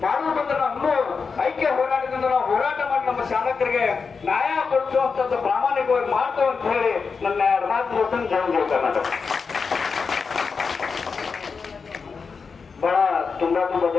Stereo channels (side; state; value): right; quieter; 5.2 dB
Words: ಇನ್ನೂ ಐಕ್ಯ ಹೋರಾಟದಿಂದ ನಾವು ಹೋರಾಟ ಮಾಡಿ ನಮ್ಮ ಚಾಲಕರಿಗೆ ನ್ಯಾಯ ಕೊಡಿಸುವಂತದ್ದು ಪ್ರಾಮಾಣಿಕವಾಗಿ ಮಾಡ್ತೇವೆ ಅಂತ ಹೇಳಿ ನನ್ನ ಮಾತು ಜಯ ಕರ್ನಾಟಕ. ಬಹಳ ತುಂಬಾ